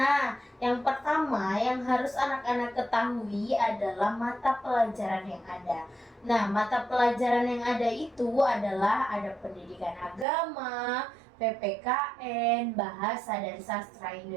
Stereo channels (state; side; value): drops out; left; at 10.2 s